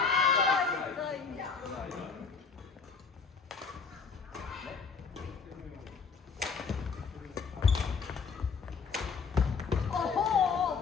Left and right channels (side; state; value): right; quieter; 5.4 dB